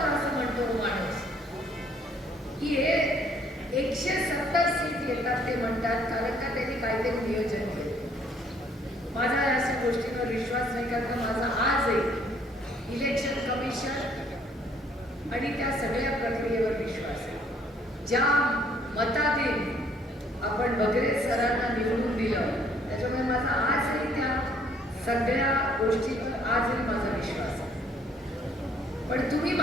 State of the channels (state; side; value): normal; both; correlation 0.63